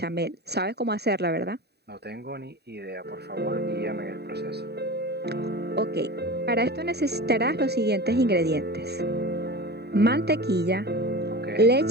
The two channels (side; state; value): left; late; 0.48 ms